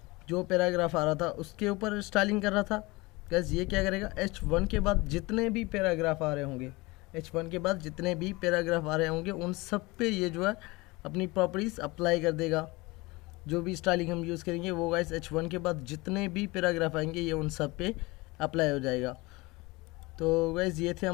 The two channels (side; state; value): right; quieter; 23.2 dB